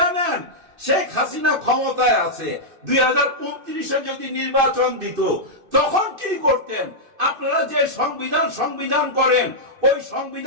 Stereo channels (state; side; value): late; left; 2.6 ms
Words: নেন। শেখ হাসিনা ক্ষমতায় আছে, 2029-এ যদি নির্বাচন দিত তখন কি করতেন? আপনারা যে সংবিধান করেন, ওই